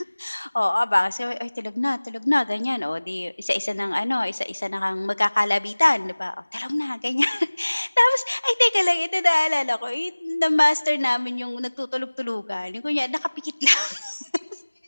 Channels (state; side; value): inverted; both; correlation -1.00